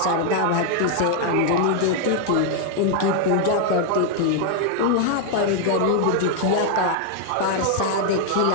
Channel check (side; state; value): both; different; correlation 0.00